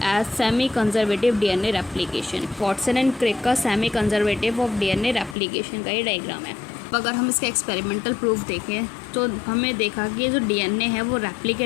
as semi conservative DNA replication. Watson and Crick का semi conservative of DNA replication का ये डायग्राम है. अगर हम इसका एक्सपेरिमेंटल प्रूफ देखें तो हमें देखा कि ये जो डीएनए है वो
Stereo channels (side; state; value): right; drops out; at 5.4 s